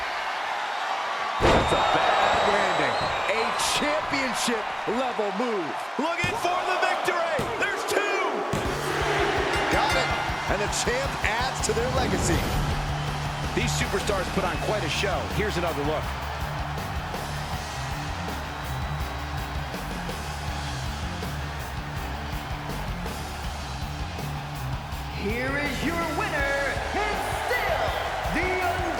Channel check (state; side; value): identical; both; correlation 1.00